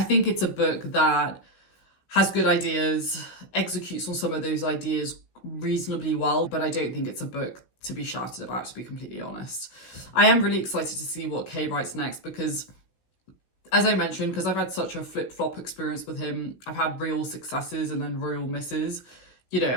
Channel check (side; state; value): right; late; 16 ms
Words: think it's a book that has good ideas, executes on some of those ideas reasonably well, but I don't think it's a book to be shouted about, to be completely honest. I am really excited to see what Kay writes next because, as I mentioned, because I've had such a flip-flop experience with him, I've had real successes and then real misses. You know,